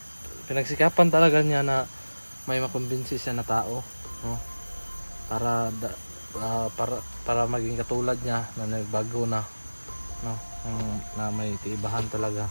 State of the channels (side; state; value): both; inverted; correlation -1.00